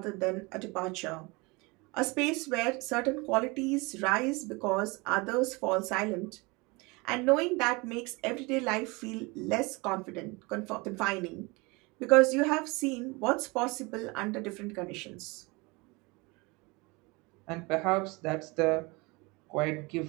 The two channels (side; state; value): left; quieter; 26.1 dB